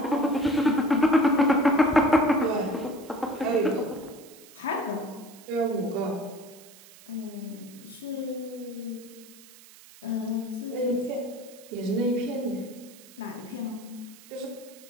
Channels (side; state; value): right; noise; hiss, 21 dB below the sound